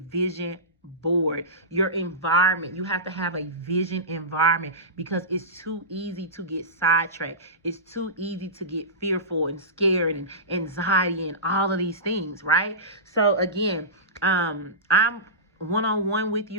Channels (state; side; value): normal; both; correlation -0.19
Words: board. Your environment, you have to have a vision environment, because it's too easy to get sidetracked. It's too easy to get fearful and scared and anxiety and all of these things, right? So again, I'm one-on-one with